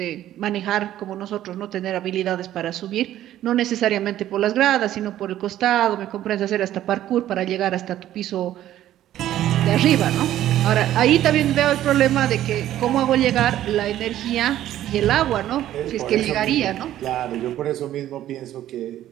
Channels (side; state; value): left; quieter; 12.7 dB